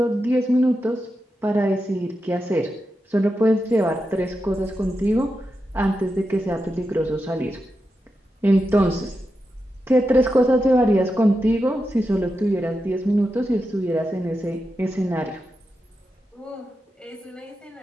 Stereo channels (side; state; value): both; normal; correlation 0.88